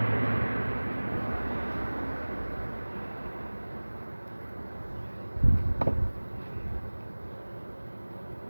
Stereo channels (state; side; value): inverted; both; correlation -1.00